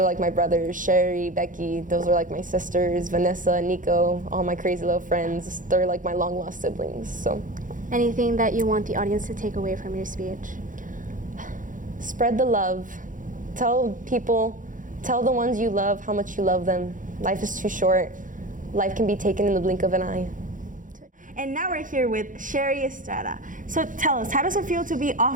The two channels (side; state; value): left; late; 0.38 ms